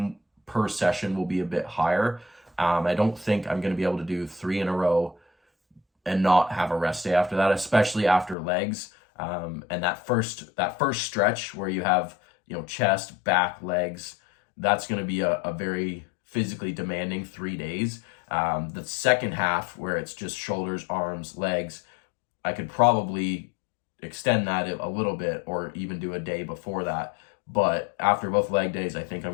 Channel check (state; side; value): drops out; right; at 8.3 s